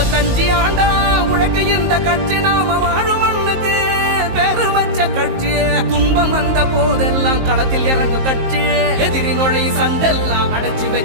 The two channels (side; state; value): left; late; 19 ms